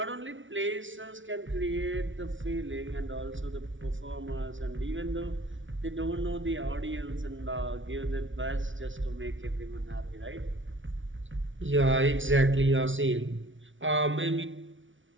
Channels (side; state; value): left; late; 0.56 ms